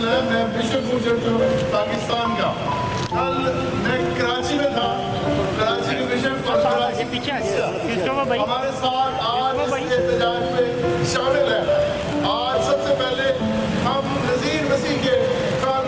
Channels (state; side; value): identical; both; correlation 1.00